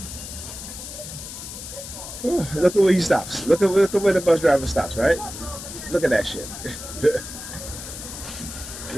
Oh, look at where he stops. Look at where the bus driver stops, right? Look at that shit.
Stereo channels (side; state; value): left; noise; hiss, 10 dB below the sound